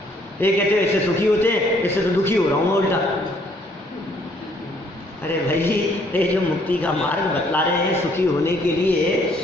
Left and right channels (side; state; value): both; normal; correlation 0.65